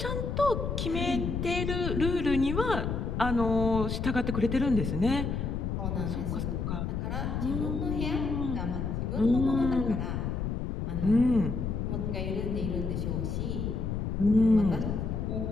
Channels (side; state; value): left; noise; rumble, 2 dB below the sound